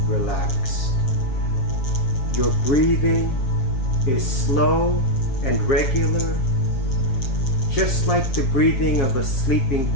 relaxed. Your breathing is slow and regular, just like the breathing of a sleeping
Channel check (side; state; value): right; late; 7.4 ms